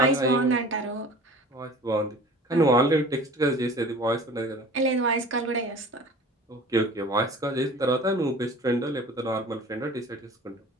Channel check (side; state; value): both; normal; correlation 0.43